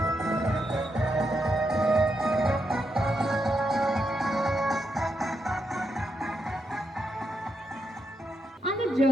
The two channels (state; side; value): normal; both; correlation 0.82